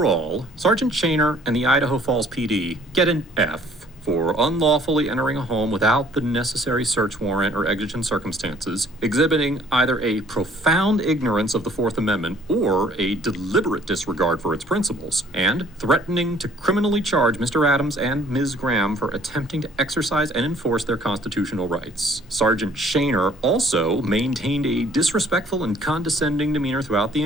Sergeant Shaner and the Idaho Falls PD get an F for unlawfully entering a home without the necessary search warrant or exigent circumstances, exhibiting either a profound ignorance of the Fourth Amendment or a deliberate disregard for its principles, and threatening to criminally charge Mr. Adams and Ms. Graham for attempting to exercise and enforce their constitutional rights. Sergeant Shaner also maintained a disrespectful and condescending demeanor throughout the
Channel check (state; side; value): normal; both; correlation 0.57